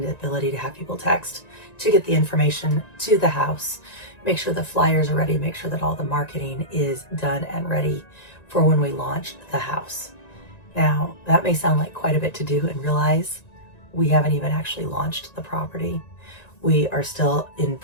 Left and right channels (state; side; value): late; right; 1.9 ms